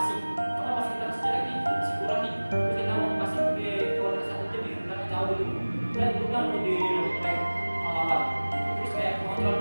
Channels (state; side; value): inverted; both; correlation -1.00